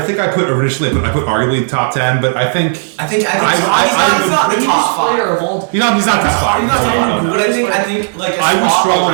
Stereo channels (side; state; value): left; silent; 60 dB below the other